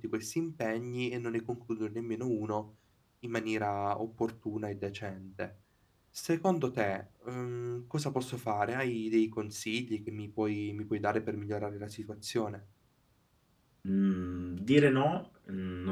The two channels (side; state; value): both; identical; correlation 1.00